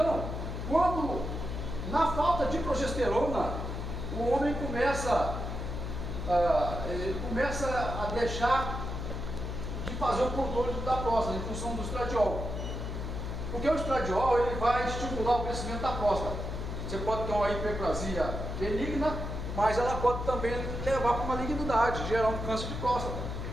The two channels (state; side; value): noise; left; hum, 5 dB below the sound